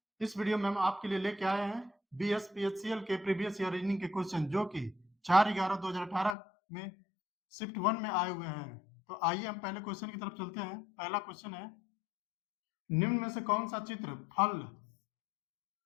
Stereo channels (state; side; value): drops out; right; at 6.4 s